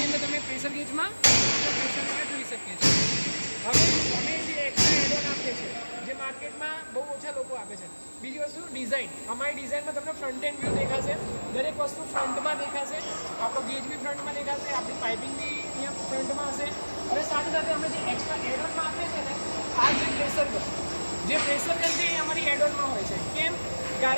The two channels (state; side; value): inverted; both; correlation -1.00